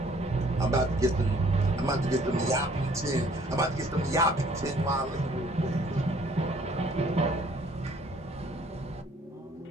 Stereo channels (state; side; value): normal; both; correlation 0.59